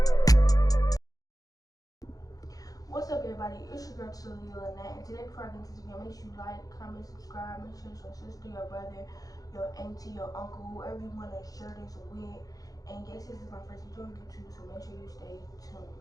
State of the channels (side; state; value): right; late; 0.18 ms